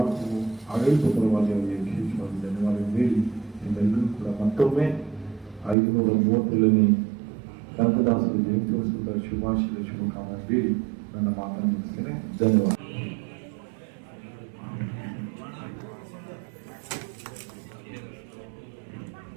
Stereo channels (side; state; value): left; drops out; at 5.8 s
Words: ಆಡಳಿತ ಪರವಾಗಿ ಅವರಿಗೆ ವಿಶೇಷವಾಗಿ ಧನ್ಯವಾದಗಳು ಹೇಳಿ, ನಿಮ್ಮೆಲ್ಲರೂ ಕೂಡ ಮತ್ತೊಮ್ಮೆ 537ನೇ ಕನಕದಾಸರ ಜಯಂತ್ಯೋತ್ಸವದ ಶುಭಾಶಯ ಶುಭಕಾಮನೆ ಹೇಳಿ ನನ್ನ ಮಾತನ್ನು ಮುಗಿಸ್ತೇನೆ. ಧನ್ಯವಾದ.